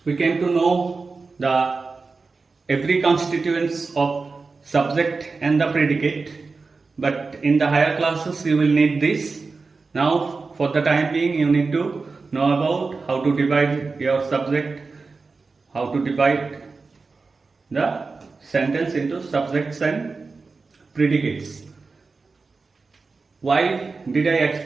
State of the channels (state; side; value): quieter; left; 4.2 dB